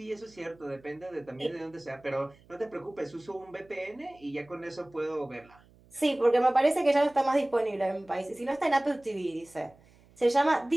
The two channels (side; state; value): right; noise; hum, 28 dB below the sound